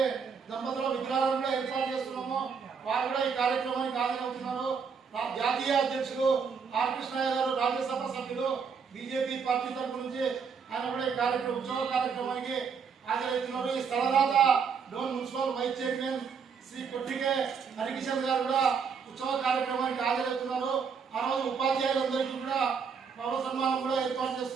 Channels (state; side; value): quieter; left; 6.0 dB